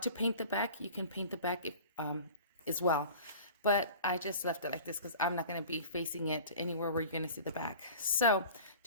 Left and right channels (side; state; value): both; inverted; correlation -0.41